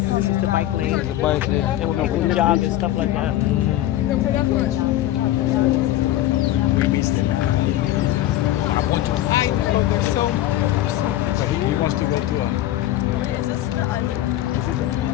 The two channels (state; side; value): quieter; right; 14.0 dB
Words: is the bike lane. The bike lane. And when people jog and stuff like that. He wants to go to a.